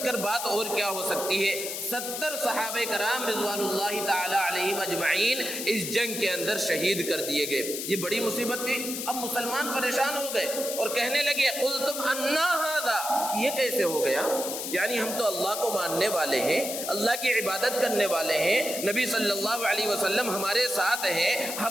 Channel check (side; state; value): left; noise; hiss, 5 dB below the sound